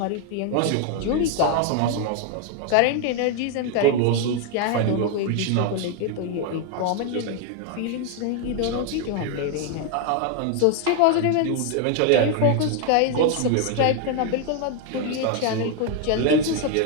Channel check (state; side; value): different; both; correlation 0.01